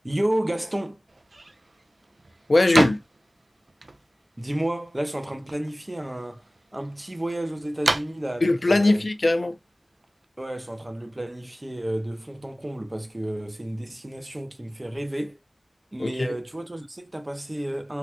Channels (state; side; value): normal; both; correlation 0.98